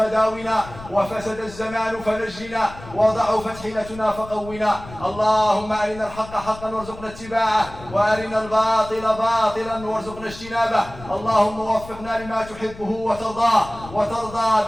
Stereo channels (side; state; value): left; noise; rumble, 16 dB below the sound